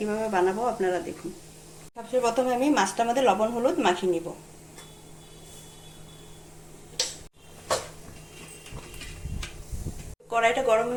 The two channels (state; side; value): identical; both; correlation 1.00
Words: বানাবো আপনারা দেখুন। সবচেয়ে প্রথমে আমি মাছটার মধ্যে লবণ হলুদ মাখিয়ে নিব। কড়াইটা গরম